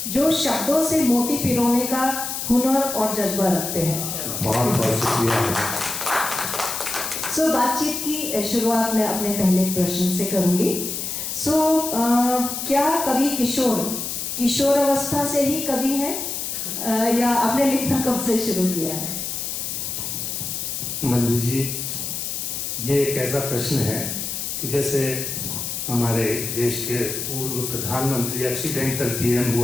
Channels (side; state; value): left; noise; hiss, 4 dB below the sound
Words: जो शब्दों से मोती पिरोने का हुनर और जज्बा रखते हैं। बहुत बहुत शुक्रिया। सो बातचीत की शुरुआत मैं अपने पहले प्रश्न से करूंगी। सो क्या कवि किशोर अवस्था से ही कवि है या आपने लिखना कब से शुरू किया है? मंजू जी, ये एक ऐसा प्रश्न है कि जैसे हमारे देश के पूर्व प्रधानमंत्री एक्सीडेंटल पीएम